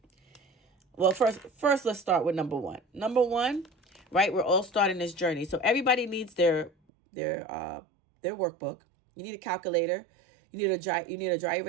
Well, first let's start with number one. Number one, right? We're all starting this journey. So everybody needs their workbook. You need a calculator. You need a dry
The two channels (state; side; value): drops out; left; at 6.7 s